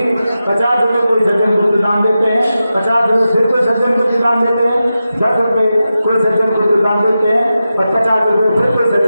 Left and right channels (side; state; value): both; inverted; correlation -0.91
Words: 50 रुपये कोई सज्जन को दान देते हैं, 50 रुपये फिर कोई सज्जन को दान देते हैं, 10 रुपये कोई सज्जन को दान देते हैं और 50 रुपये फिर कोई